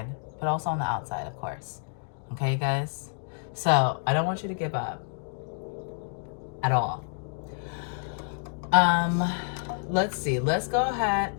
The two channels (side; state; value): right; silent; 59 dB below the other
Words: but also on the outside, of course. Okay, guys? So I don't want you to give up at all. Let's see. Let's go ahead